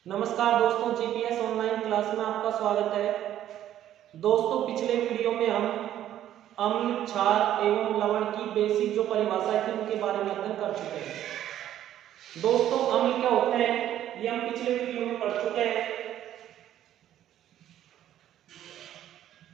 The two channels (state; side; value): quieter; left; 11.8 dB